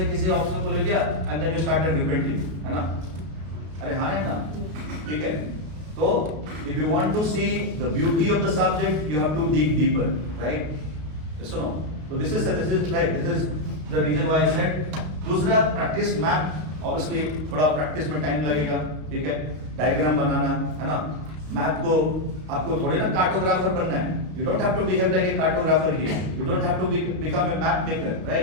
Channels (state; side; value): late; left; 32 ms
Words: किसी ऑप्शन को ले लिया and then you started repenting, है ना, अरे हाँ है ना, ठीक है। तो if you want to see the beauty of the subject you have to dig deeper, right, सुनो। तो this is right, this is the reason why I said. दूसरा प्रैक्टिस मैप, ऑब्वियसली थोड़ा प्रैक्टिस में टाइम लगेगा, ठीक है, diagram बनाना, है ना। मैप को आपको थोड़े ना कार्टोग्राफर बनना है, you don't have to behave like a cartographer here, you don't have to become a map maker,